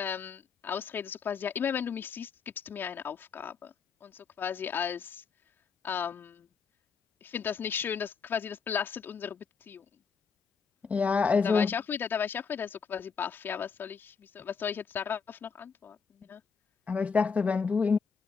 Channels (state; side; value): quieter; right; 5.7 dB